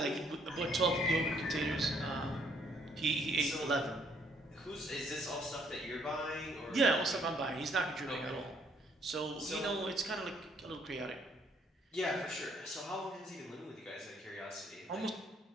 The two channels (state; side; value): normal; both; correlation 0.67